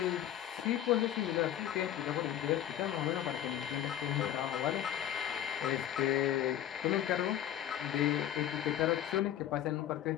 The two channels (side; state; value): right; quieter; 11.4 dB